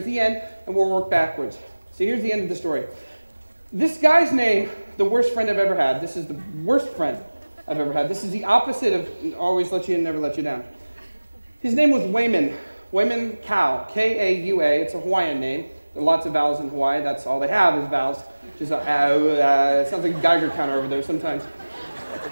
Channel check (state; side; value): inverted; both; correlation -1.00